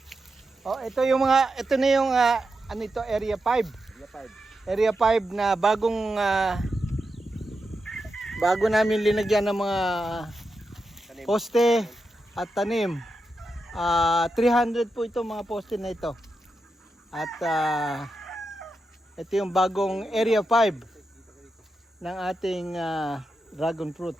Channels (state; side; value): normal; both; correlation 0.88